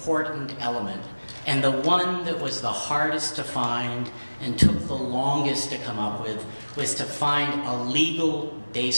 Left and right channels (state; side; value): inverted; both; correlation -1.00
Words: element, and the one that was the hardest to find and took the longest to come up with, was to find a legal